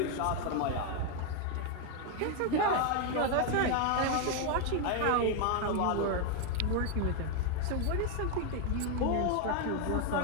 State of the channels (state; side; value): different; both; correlation 0.01